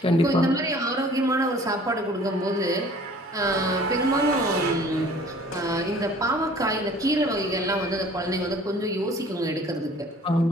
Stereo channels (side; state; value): both; normal; correlation 0.50